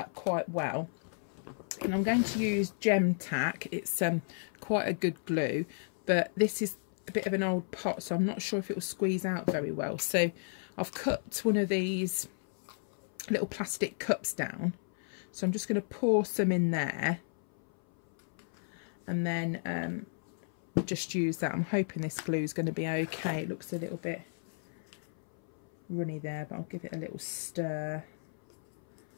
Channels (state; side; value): silent; right; 56 dB below the other